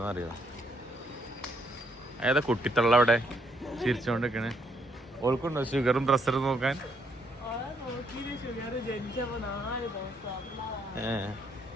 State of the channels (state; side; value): normal; both; correlation 0.72